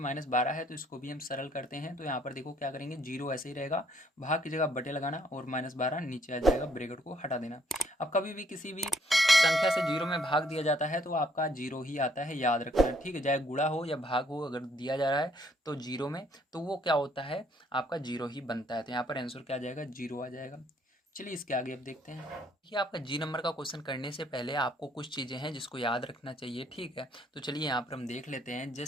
है, तो इसको भी हम सरल करते हैं। तो यहाँ पर देखो क्या करेंगे, 0 ऐसे ही रहेगा, भाग की जगह बटे लगाना और -12 नीचे आ जाएगा, ब्रैकेट को हटा देना। अब कभी भी किसी भी संख्या से 0 में भाग दिया जाता है तो आपका 0 ही आता है, याद रखना। ठीक है, चाहे गुणा हो या भाग हो, अगर दिया जा रहा है तो 0 में, तो वो क्या होता है, आपका 0 ही बनता है। तो यहाँ पर आंसर क्या आ जाएगा, 0 आ जाएगा। चलिए इसके आगे अब देखते हैं। ये आपका जी नंबर का क्वेश्चन करने से पहले आपको कुछ चीज़ें हैं जिसको याद रखना चाहिए। ठीक है, तो चलिए यहाँ पर हम देख लेते हैं।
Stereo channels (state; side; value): normal; both; correlation 0.67